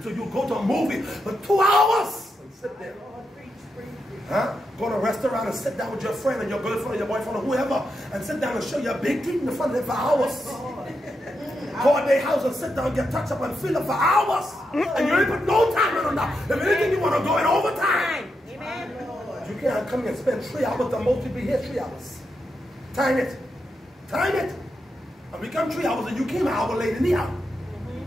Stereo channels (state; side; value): normal; both; correlation 0.85